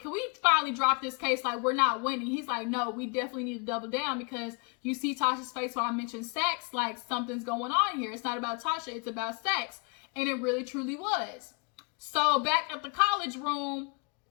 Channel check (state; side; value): quieter; right; 33.7 dB